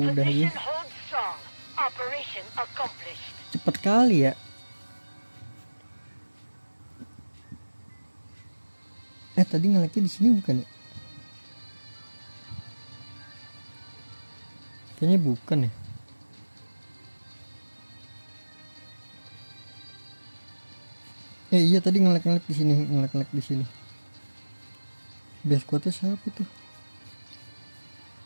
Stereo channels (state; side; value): inverted; both; correlation -1.00